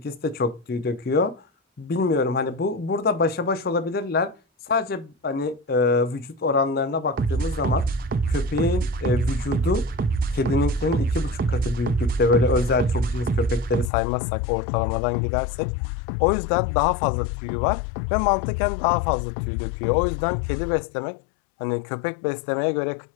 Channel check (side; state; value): right; drops out; at 13.9 s